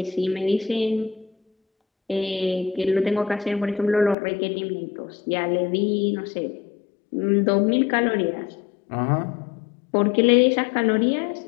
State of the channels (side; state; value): right; drops out; at 4.2 s